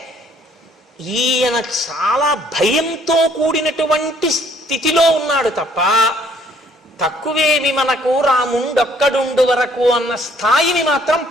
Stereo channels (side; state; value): both; normal; correlation 0.62